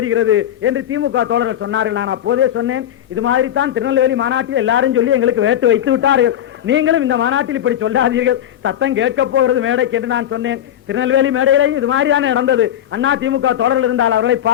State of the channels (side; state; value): right; quieter; 11.2 dB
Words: என்று திமுக தோழர்கள் சொன்னார்கள். நான் அப்போதே சொன்னேன், இது மாதிரி தான் திருநெல்வேலி மாநாட்டில் எல்லாரும் சொல்லி எங்களுக்கு வேட்டு வைத்து விட்டார்கள், நீங்களும் இந்த மாநாட்டில் இப்படி சொல்லாதீர்கள், சத்தம் கேட்க போகிறது மேடைக்கு என்று நான் சொன்னேன். திருநெல்வேலி மேடையிலே இது மாதிரி தானே நடந்தது. அண்ணா திமுக தோழர்கள் இருந்தால் அவர்களை